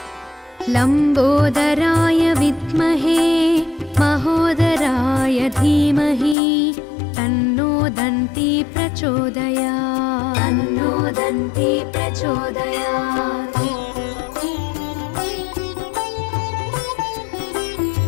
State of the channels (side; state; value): right; drops out; at 6.4 s